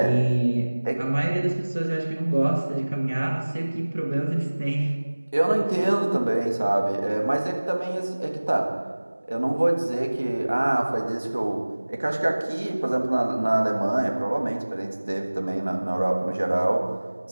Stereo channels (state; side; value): inverted; both; correlation -1.00